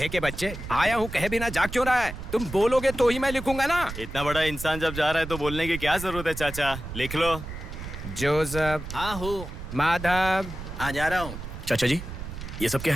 के बच्चे, आया हूँ कहे बिना जाग क्यों रहा है? तुम बोलोगे तो ही मैं लिखूंगा ना। इतना बड़ा इंसान जब जा रहा है तो बोलने की क्या जरूरत है चाचा? लिख लो। जोसेफ। हाँ हूँ। माधव। हाँ जा रहा हूँ। चाचा जी, ये सब क्या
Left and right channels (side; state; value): right; noise; rumble, 9 dB below the sound